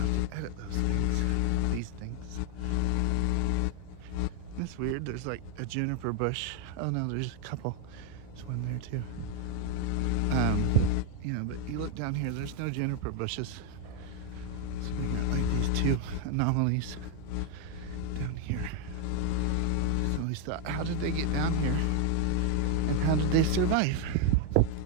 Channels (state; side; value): different; both; correlation 0.00